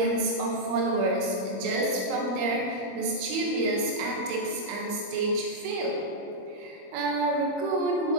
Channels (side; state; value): left; late; 25 ms